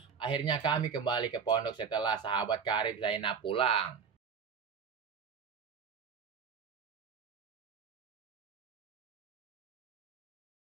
Akhirnya kami kembali ke pondok setelah sahabat karib Zainab pulang.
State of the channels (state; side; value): quieter; left; 6.5 dB